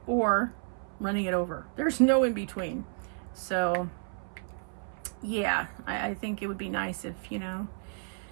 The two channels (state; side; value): silent; left; 57 dB below the other